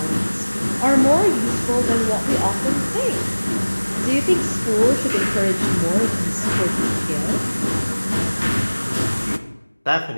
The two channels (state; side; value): inverted; both; correlation -1.00